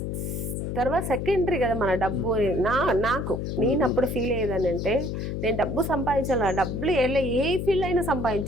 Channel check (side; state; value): left; noise; hum, 3 dB below the sound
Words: తర్వాత సెకండరీ కదా మన డబ్బు అని నేను అప్పుడు ఫీల్ అయ్యేదాన్ని అంటే నేను డబ్బు సంపాదించాలి, డబ్బులు ఏ ఫీల్డ్ అయినా